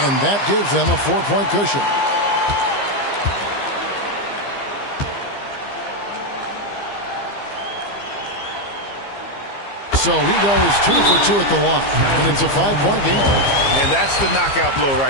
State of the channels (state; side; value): late; right; 15 ms